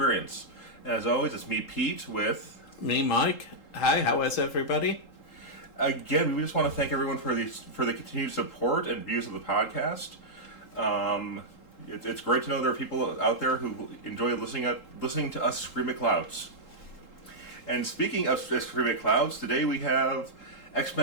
And as always, it's me, Pete, with me, Mike. Hi. How is everybody? Again, we just want to thank everyone for the continued support and views of the podcast. It's great to know there are people out there who enjoy listening to us scream at clouds. And speaking of scream at clouds, today we have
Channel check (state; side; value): late; right; 3.8 ms